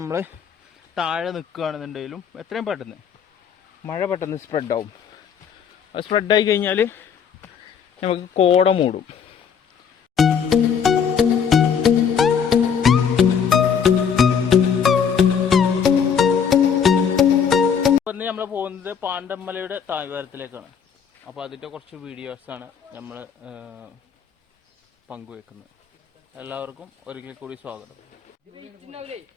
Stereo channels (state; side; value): quieter; right; 7.2 dB